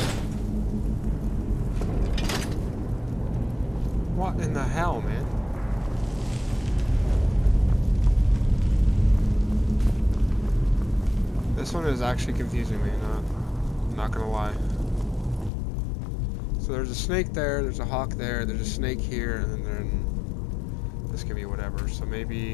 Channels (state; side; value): drops out; right; at 15.5 s